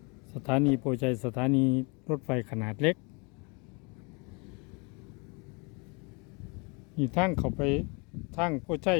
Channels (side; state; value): right; quieter; 31.0 dB